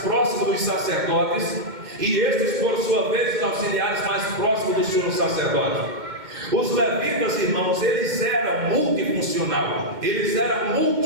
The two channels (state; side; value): late; left; 2.1 ms